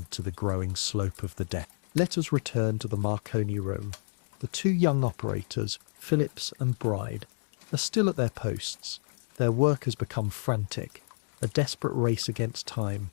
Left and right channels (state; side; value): silent; right; digital silence